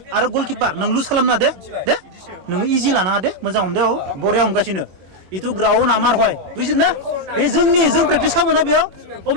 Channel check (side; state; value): left; late; 21 ms